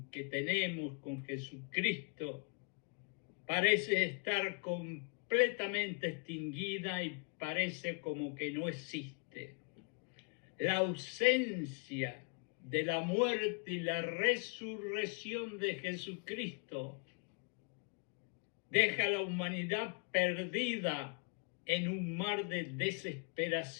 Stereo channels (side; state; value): right; quieter; 37.3 dB